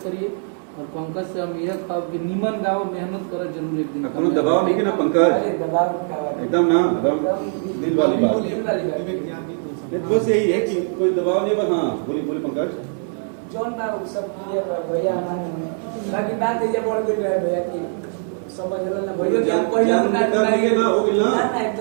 करिए और पंकज से हम यह कहब कि निमन गाओ मेहनत कर जरूर एक दिन कोनो दबाव नहीं है ना पंकज अरे दबाव का बात एकदम ना एकदम दिल वाली बात बस यही है कि कोई दबाव नहीं बस हाँ बोली पंकज जौन बा सब क्लियर बा भैया हमारे बाकी बात ये बढ़ गई रहे भैया की समझला ना भैया कि हम पहले ना हो गेल ना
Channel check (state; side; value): silent; left; 59 dB below the other